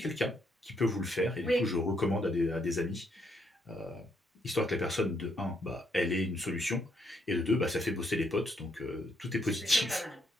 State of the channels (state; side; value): normal; both; correlation 0.74